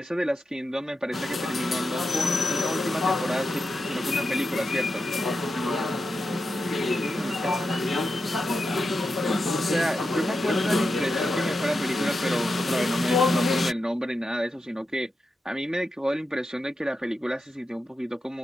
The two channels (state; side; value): normal; both; correlation 0.89